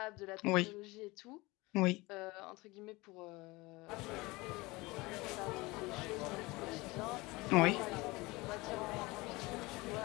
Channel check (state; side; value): quieter; right; 22.6 dB